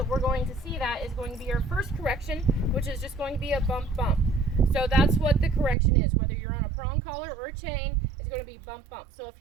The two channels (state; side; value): drops out; left; at 5.8 s